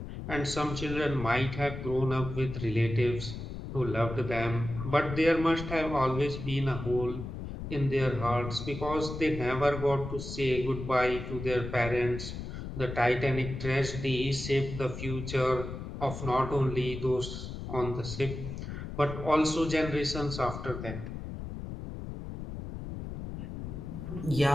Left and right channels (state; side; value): noise; left; rumble, 8 dB below the sound